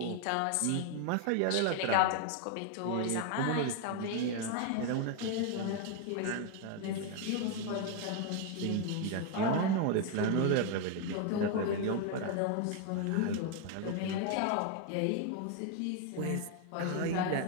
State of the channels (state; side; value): different; both; correlation 0.01